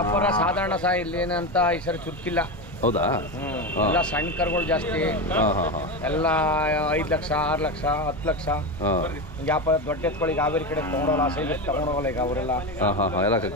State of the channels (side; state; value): both; normal; correlation 0.18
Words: ಸಾಧಾರಣ ಇಲ್ಲಿ ಏನಂತ ಈ ಸರಿ ಚುರುಕಿಲ್ಲ. ಹೌದಾ? ಎಲ್ಲ ಸಣ್ಣ ಕರುಗಳು ಜಾಸ್ತಿ. ಎಲ್ಲ 5 ಲಕ್ಷ 6 ಲಕ್ಷ 10 ಲಕ್ಷ ವ್ಯಾಪಾರ. ದೊಡ್ಡ ಎತ್ಕೊಳ್ಳಿ ಹಾವೇರಿ ಕಡೆ ತಗೊಂಡೋಲ್ಲ, ಸೈಜ್ ತಗೊಂಡೋಗಲ್ಲ ಈಗ ಅವರೆಲ್ಲ.